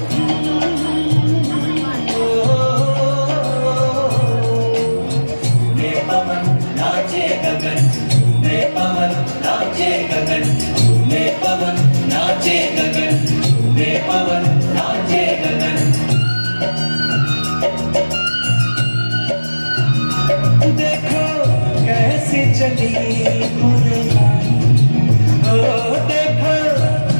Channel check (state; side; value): inverted; both; correlation -1.00